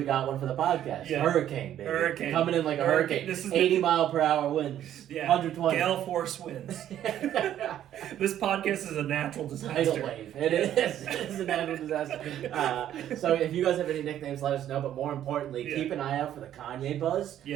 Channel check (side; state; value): left; quieter; 11.3 dB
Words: got one for the podcast. Yeah. Hurricane, baby. Hurricane. Coming in like a hurricane. This is 80-mile-per-hour winds. Yeah. 120. Gale force winds. This podcast is a natural Tidal disaster. wave. It is. It's a natural disaster. So if you guys have any nicknames, let us know. But more importantly, Yeah. keep an eye out for the Kanye buzz and